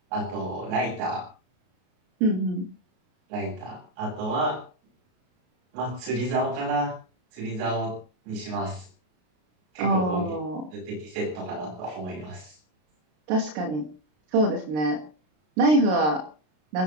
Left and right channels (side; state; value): left; late; 33 ms